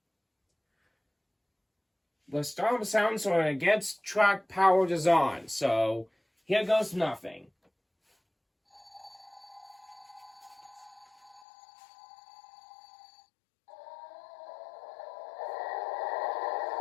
The start sounds when it gets track powered is on. So here goes nothing.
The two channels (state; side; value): drops out; right; at 11.4 s